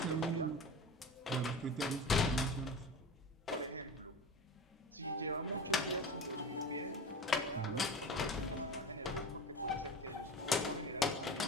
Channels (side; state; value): both; normal; correlation 0.31